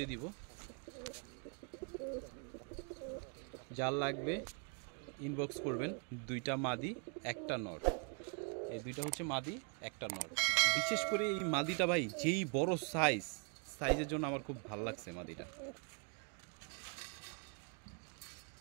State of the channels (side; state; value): left; quieter; 38.0 dB